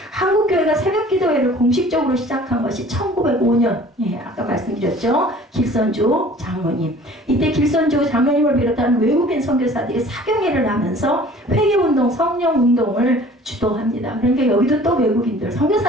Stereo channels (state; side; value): normal; both; correlation 0.49